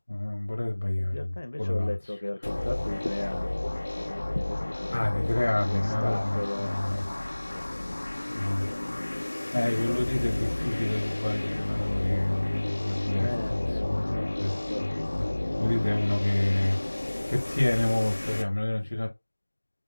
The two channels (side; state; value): both; inverted; correlation -1.00